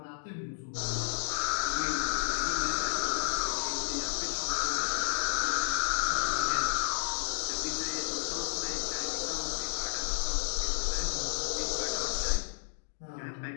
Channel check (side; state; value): right; silent; digital silence